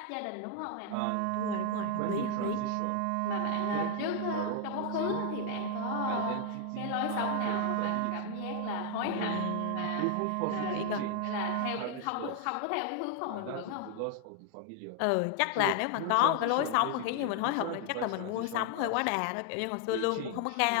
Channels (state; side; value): different; both; correlation 0.00